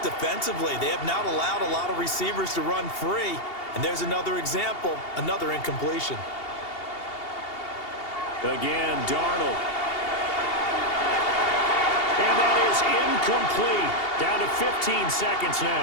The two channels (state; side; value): late; right; 2.8 ms